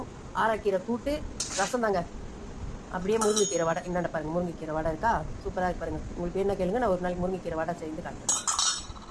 ஆராக்கீரை கூட்டு, ரசம் தாங்க. அப்படியே முருங்கைக்கீரை வடை என்னென்ன பாருங்கள். முருங்கைக்கீரை வடை இருக்கா, சூப்பராக இருக்கு பாருங்கள். உங்களுக்கு என்ன கேளுங்க, நான் ஒரு நாளைக்கு முருங்கைக்கீரை வடை செய்து காட்டுறேன்.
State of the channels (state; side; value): identical; both; correlation 1.00